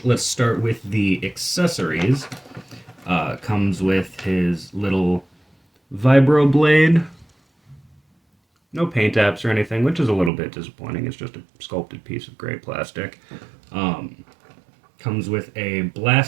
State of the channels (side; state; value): left; drops out; at 10.3 s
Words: let's start with the accessories. Comes with his little vibro blade. No paint apps or anything, which is a little bit disappointing. It's just a sculpted piece of gray plastic. Comes with a